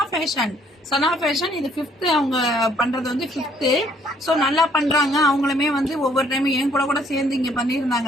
ஃபேஷன் இது 5th அவங்க பண்றது வந்து 5th. ஸோ நல்லா பண்றாங்க. அவங்களுமே வந்து ஒவ்வொரு டைமும் என் கூட சேர்ந்து இங்க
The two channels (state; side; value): normal; both; correlation 0.64